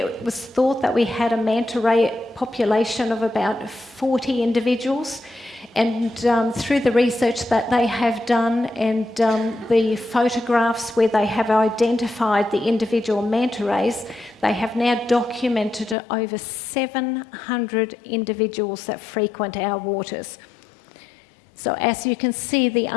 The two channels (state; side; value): drops out; right; at 16.0 s